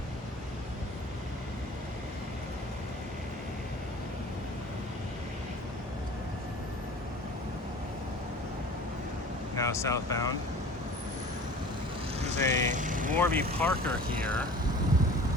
Now southbound. There's a Warby Parker here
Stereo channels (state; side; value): normal; both; correlation 0.43